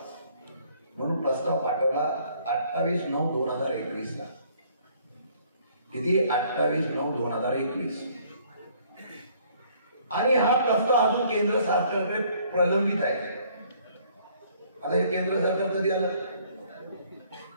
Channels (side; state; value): both; inverted; correlation -0.61